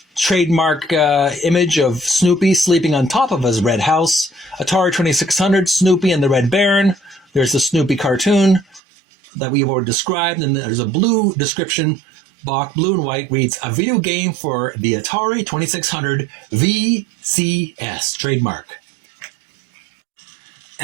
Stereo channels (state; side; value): drops out; left; at 8.8 s